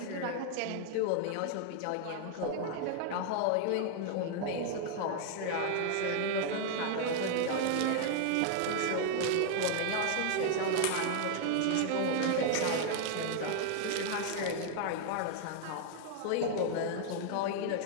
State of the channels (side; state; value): both; different; correlation 0.00